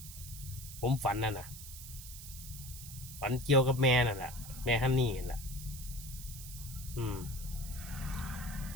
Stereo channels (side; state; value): right; noise; hiss, 12 dB below the sound